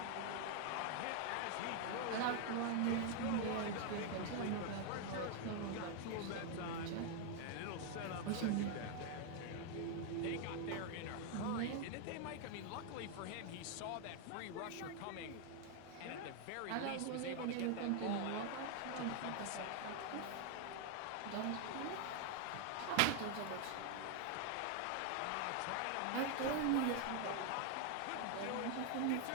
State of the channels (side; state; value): both; different; correlation 0.01